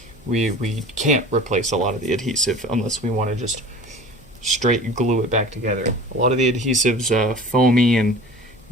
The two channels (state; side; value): normal; both; correlation 0.41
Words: we can't replace a lot of the adhesive unless we want to just straight glue it back together. A lot of the adhesive's foamy and